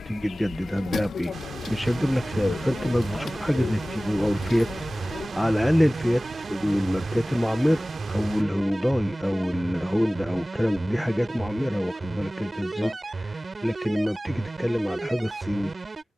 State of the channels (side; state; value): both; normal; correlation 0.98